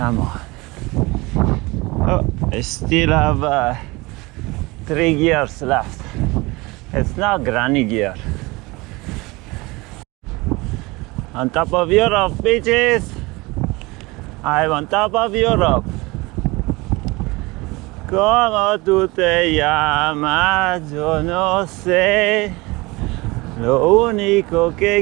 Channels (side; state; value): left; quieter; 23.4 dB